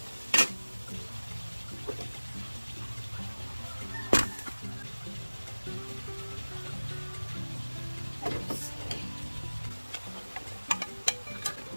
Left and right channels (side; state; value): both; inverted; correlation -1.00